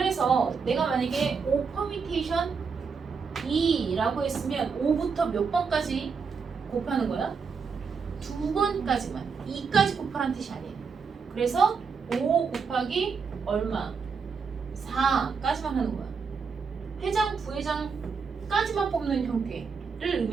내가 만약에 5 퍼미테이션 2라고 했으면 5부터 몇 번까지 곱하는 거야? 2번까지만. 2까지 곱하라는 뜻이 아니에요. 그래서 5 곱하기 얼마? 4까지만 하는 거야. 회장, 부회장까지만 뽑는 형태를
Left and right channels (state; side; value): quieter; left; 5.5 dB